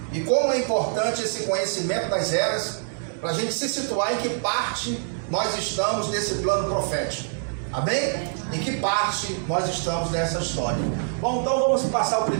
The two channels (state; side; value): silent; left; digital silence